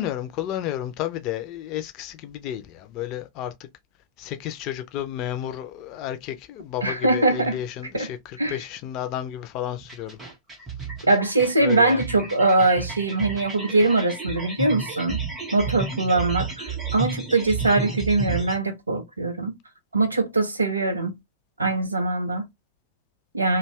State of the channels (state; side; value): inverted; both; correlation -0.59